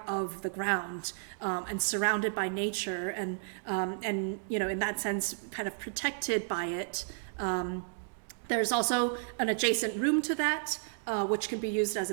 of the ground and surrounded by nature, and in that sense, kind of protected by it. There's also an adjacent room to that, which can be used as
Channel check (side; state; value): left; silent; digital silence